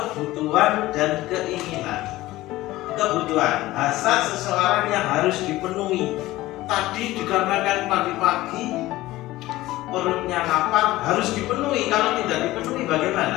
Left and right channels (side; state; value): right; quieter; 17.3 dB